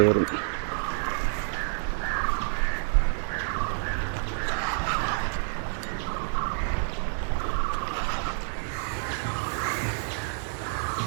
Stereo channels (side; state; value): left; silent; 59 dB below the other